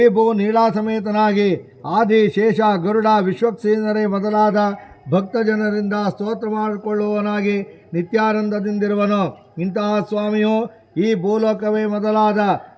ನೀಳಾ ಸಮೇತನಾಗಿ ಆದಿ ಶೇಷ ಗರುಡ ವಿಶ್ವಕ್ಸೇನರೇ ಮೊದಲಾದ ಭಕ್ತ ಜನರಿಂದ ಸ್ತೋತ್ರ ಮಾಡಿಕೊಳ್ಳುವವನಾಗಿ ನಿತ್ಯಾನಂದದಿಂದಿರುವನು. ಇಂತಹ ಸ್ವಾಮಿಯು ಈ ಭೂಲೋಕವೇ ಮೊದಲಾದ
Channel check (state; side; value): identical; both; correlation 1.00